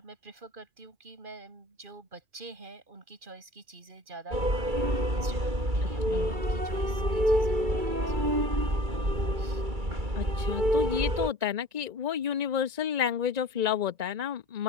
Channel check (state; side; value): late; left; 2.4 ms